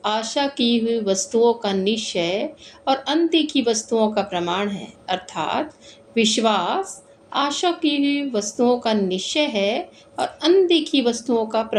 आशा की हुई वस्तुओं का निश्चय और अनदेखी वस्तुओं का प्रमाण है। अर्थात विश्वास आशा की हुई वस्तुओं का निश्चय है और अनदेखी वस्तुओं का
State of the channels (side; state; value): both; identical; correlation 1.00